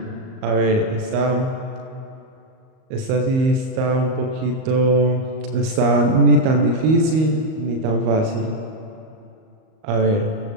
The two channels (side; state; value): left; late; 38 ms